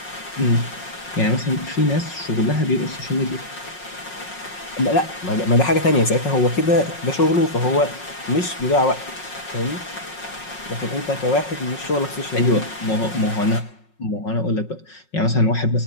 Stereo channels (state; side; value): late; right; 5.5 ms